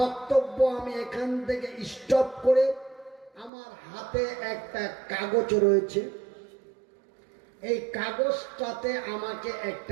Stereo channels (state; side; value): drops out; left; at 3.5 s